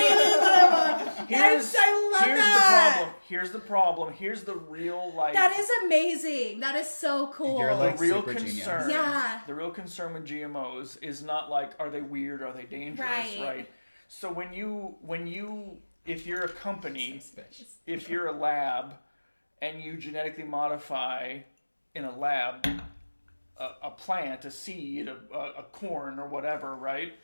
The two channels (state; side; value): inverted; both; correlation -1.00